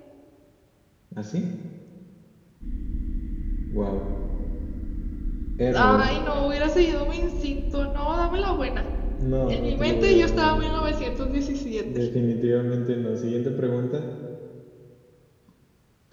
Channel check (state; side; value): identical; both; correlation 1.00